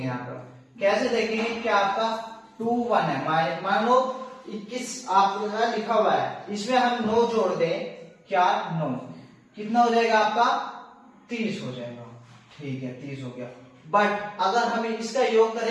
यहाँ पर कैसे देखेंगे कि आपका 2 1 है, मान लो 21 आपका लिखा हुआ है, इसमें हम 9 जोड़ दें, क्या 9 कितना हो जाएगा आपका 30 हो जाएगा। ठीक है, 30 हो गया, बट अगर हम इसका योग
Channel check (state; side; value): identical; both; correlation 1.00